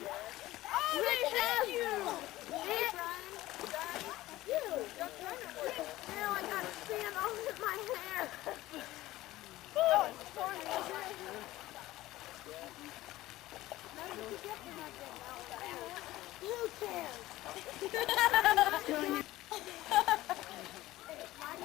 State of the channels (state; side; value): quieter; right; 16.8 dB